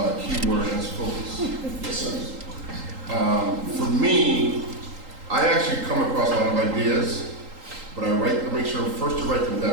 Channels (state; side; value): late; left; 3.8 ms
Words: key word, and that's focus. Yes, sir. For me, I actually come across a lot of ideas, but I make sure first to write them